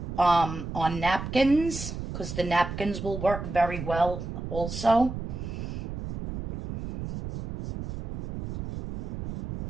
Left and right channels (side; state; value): right; noise; rumble, 6 dB below the sound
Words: on napkins, because the napkins will work very well also.